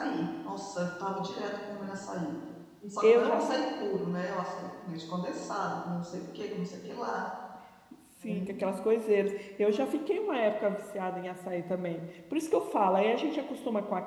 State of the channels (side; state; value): both; identical; correlation 1.00